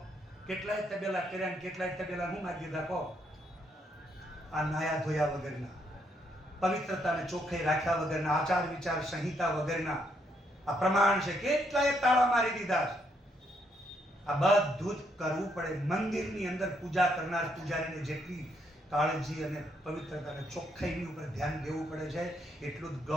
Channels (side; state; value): both; normal; correlation 0.74